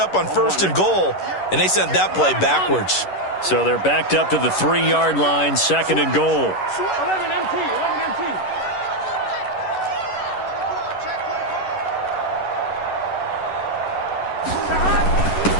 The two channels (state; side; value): late; right; 11 ms